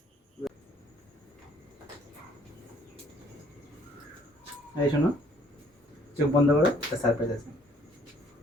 এই শোনো, চোখ বন্ধ করো, একটা সারপ্রাইজ আছে।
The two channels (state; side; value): normal; both; correlation 0.61